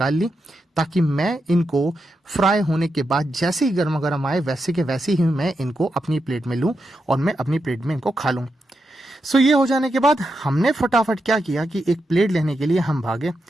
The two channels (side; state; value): both; normal; correlation 0.86